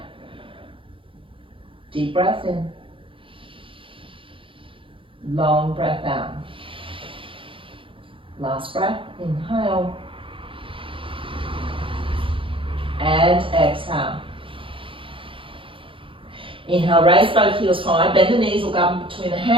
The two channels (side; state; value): left; late; 0.25 ms